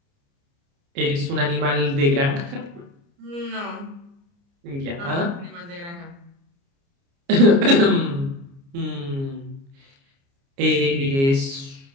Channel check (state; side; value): late; left; 29 ms